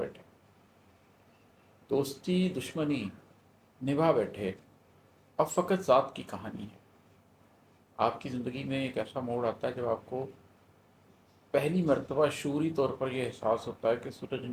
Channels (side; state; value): both; identical; correlation 1.00